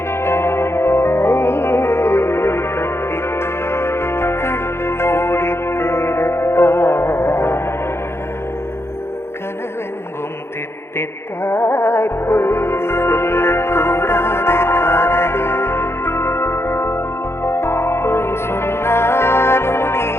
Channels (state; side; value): late; right; 0.12 ms